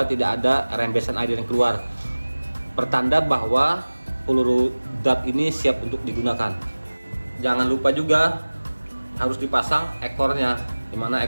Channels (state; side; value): inverted; both; correlation -1.00